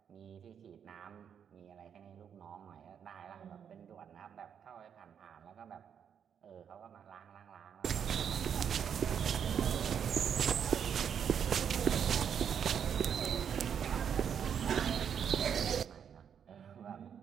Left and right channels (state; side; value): quieter; left; 7.9 dB